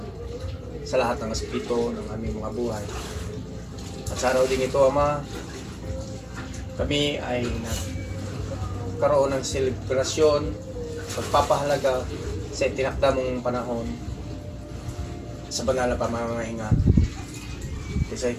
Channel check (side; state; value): both; identical; correlation 1.00